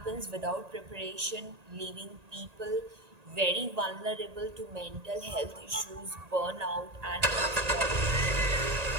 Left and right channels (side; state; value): left; late; 1.8 ms